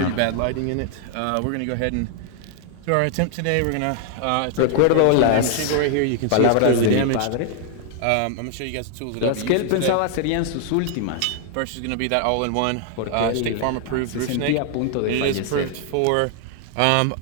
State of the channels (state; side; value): different; both; correlation 0.00